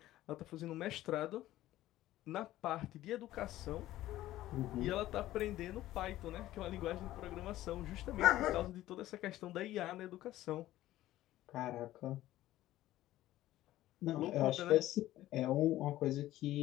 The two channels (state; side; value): quieter; right; 14.9 dB